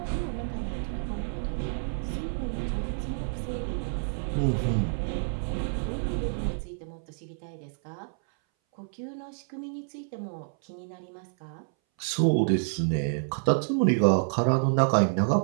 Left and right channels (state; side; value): silent; left; 59 dB below the other